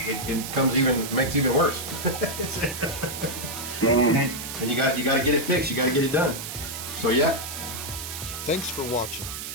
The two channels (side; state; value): right; noise; hiss, 7 dB below the sound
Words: makes it even worse. And you got to get it fixed. You got to get it done. So yeah. Thanks for watching.